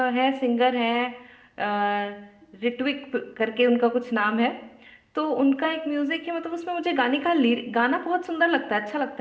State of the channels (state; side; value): identical; both; correlation 1.00